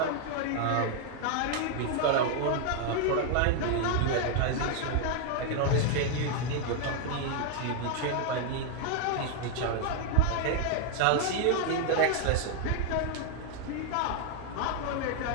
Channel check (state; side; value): different; both; correlation 0.00